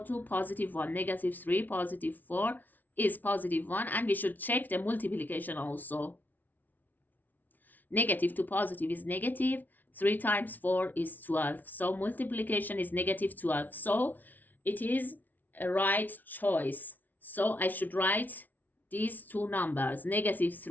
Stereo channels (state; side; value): late; right; 0.081 ms